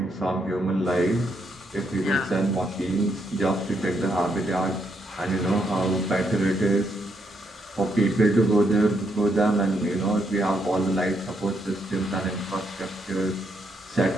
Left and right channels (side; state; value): both; normal; correlation 0.77